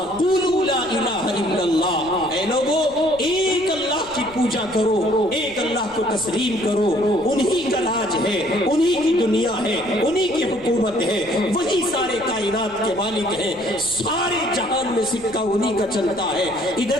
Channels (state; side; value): noise; left; rumble, 21 dB below the sound